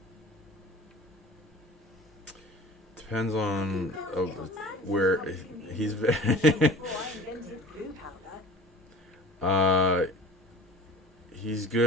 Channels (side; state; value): both; normal; correlation 0.43